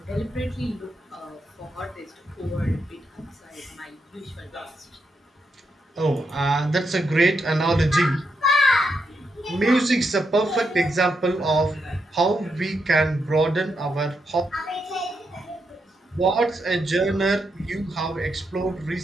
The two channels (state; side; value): normal; both; correlation 0.82